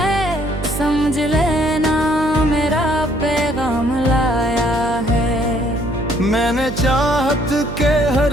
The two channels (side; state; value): right; noise; hum, 9 dB below the sound